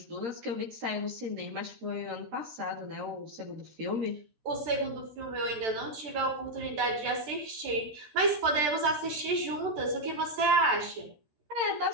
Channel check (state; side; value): late; left; 13 ms